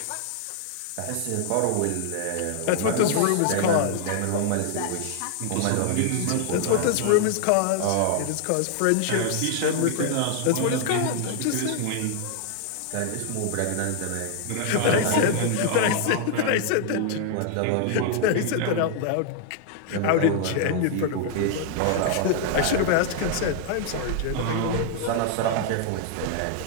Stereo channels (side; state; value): both; different; correlation 0.00